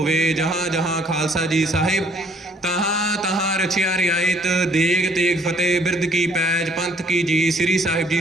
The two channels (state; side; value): normal; both; correlation 0.62